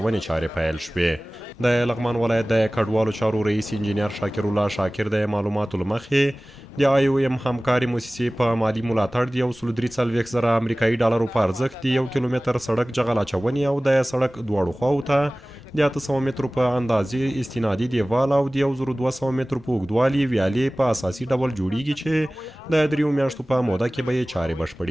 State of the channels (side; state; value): both; normal; correlation 0.98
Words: چارې پیل شوې. د لغمان ولایت د کډوالو چارو رئیس انجینیر شاکر الله شاکر د معلوماتو له مخې د IOM همکاري موسسې په مالي ملاتړ د $143,000 امریکایي په ارزښت د 1 کیلومتر سړک جغل اچونې او د سړک دواړو خواو ته د 800 مترو په اندازې استنادي دیوال او د 1200 مترو په اوږدوالي ویالې په اساسي ډول جوړیږي چې د 3 میاشتو په موده کې به یې چارې